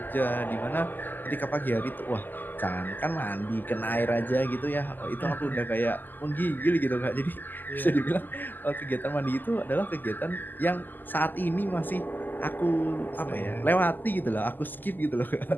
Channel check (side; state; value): right; late; 0.088 ms